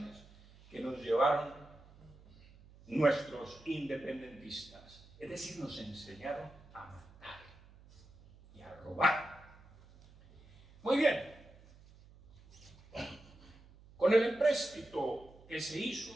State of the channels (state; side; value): noise; right; hum, 23 dB below the sound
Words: que nos llevaron nuestros independentistas. Es decir, nos enseñaron a matar y a robar. Muy bien. Con el empréstito que se hizo